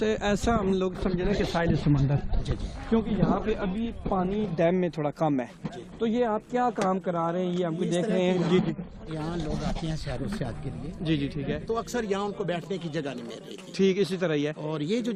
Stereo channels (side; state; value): both; identical; correlation 1.00